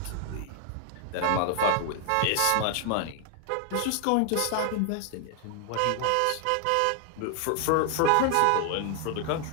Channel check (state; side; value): different; both; correlation 0.00